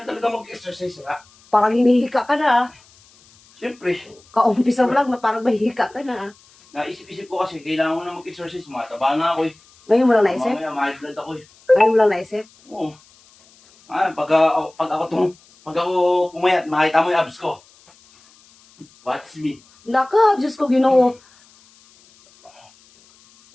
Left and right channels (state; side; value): noise; left; hiss, 29 dB below the sound